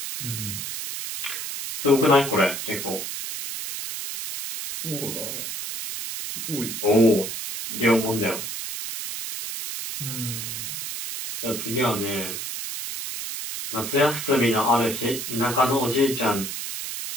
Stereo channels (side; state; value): right; noise; hiss, 6 dB below the sound